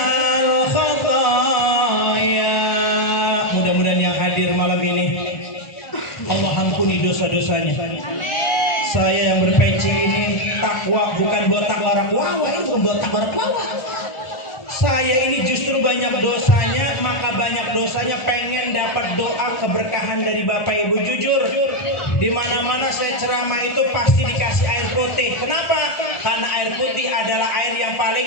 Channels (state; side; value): late; right; 1.4 ms